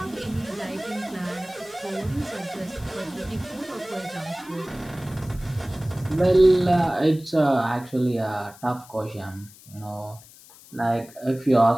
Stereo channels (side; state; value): left; noise; hiss, 22 dB below the sound